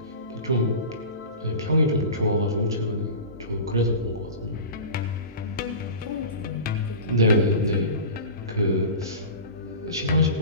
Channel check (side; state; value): both; inverted; correlation -0.32